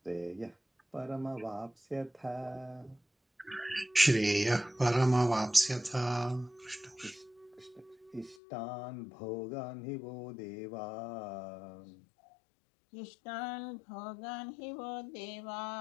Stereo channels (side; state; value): right; drops out; at 8.3 s